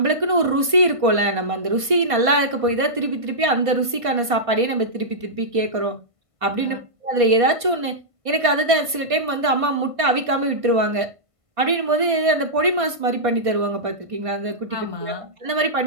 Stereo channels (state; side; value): late; left; 1.5 ms